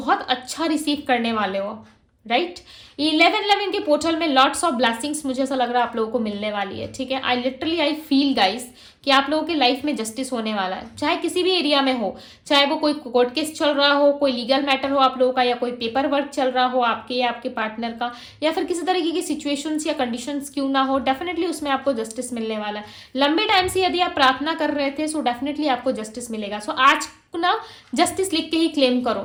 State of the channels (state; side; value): identical; both; correlation 1.00